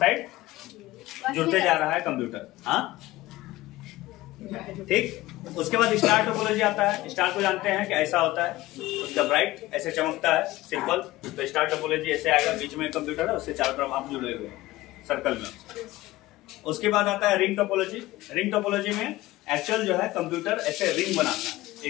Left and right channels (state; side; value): quieter; right; 17.8 dB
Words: जुड़ते जा रहा है कंप्यूटर, हाँ, ठीक। उसके बाद स्टार टोपोलॉजी आता है। स्टार को जानते हैं कि ऐसा होता है, उसका ब्राइट ऐसे चमकता है, सिंपल। तो स्टार टोपोलॉजी ऐसे आएगा, बीच में कंप्यूटर है, उससे चारों तरफ आप जुड़े हुए सर्कल में। उसके बाद आता है रिंग टोपोलॉजी। रिंग टोपोलॉजी में एक्चुअल जो है कंप्यूटर ऐसे रिंग बनाता है,